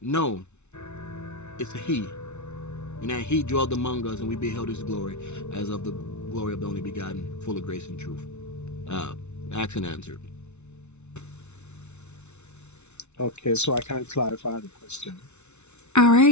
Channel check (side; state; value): right; late; 0.82 ms